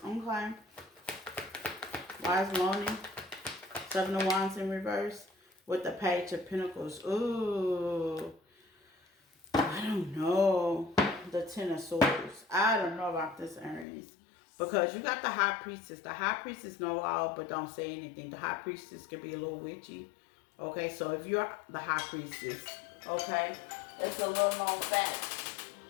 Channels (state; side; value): drops out; right; at 13.9 s